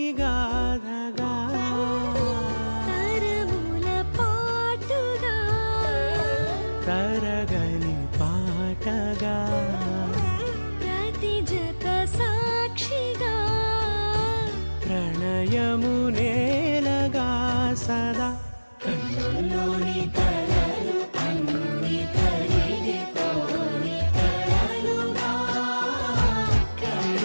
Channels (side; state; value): both; inverted; correlation -1.00